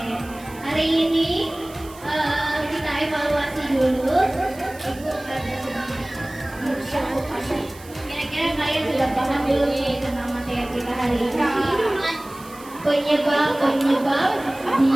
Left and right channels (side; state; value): right; noise; hiss, 21 dB below the sound